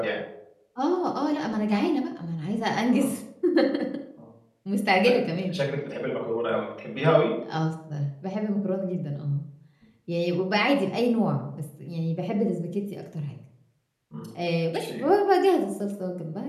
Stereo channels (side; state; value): both; identical; correlation 1.00